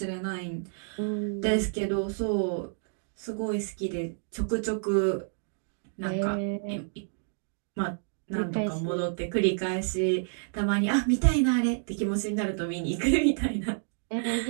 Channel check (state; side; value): silent; left; digital silence